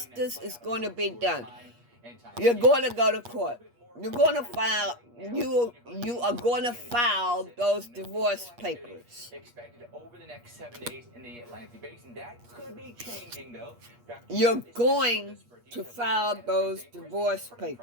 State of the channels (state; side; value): late; left; 8.4 ms